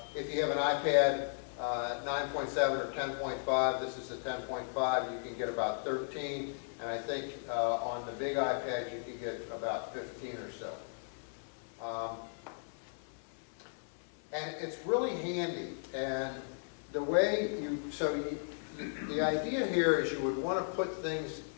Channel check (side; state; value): right; silent; 54 dB below the other